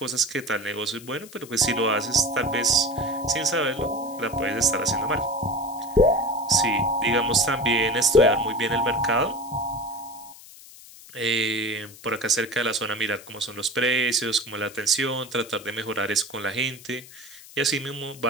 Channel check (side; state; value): left; noise; hiss, 19 dB below the sound